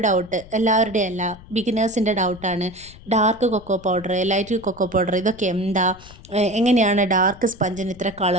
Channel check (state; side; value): noise; left; rumble, 20 dB below the sound